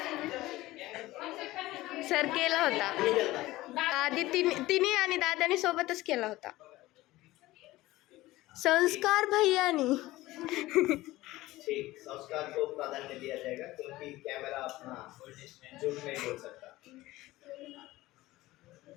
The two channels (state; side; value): quieter; right; 17.8 dB